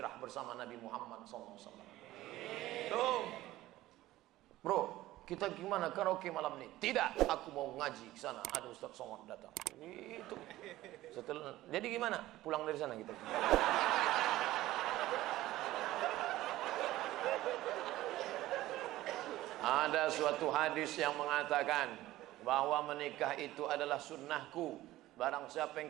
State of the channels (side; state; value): left; quieter; 16.1 dB